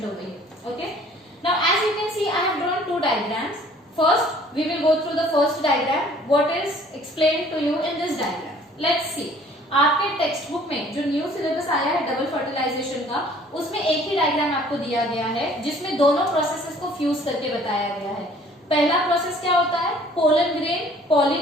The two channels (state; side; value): normal; both; correlation 0.55